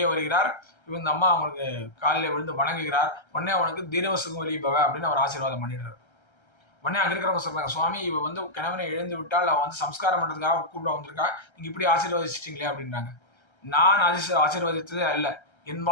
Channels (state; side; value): late; right; 1.3 ms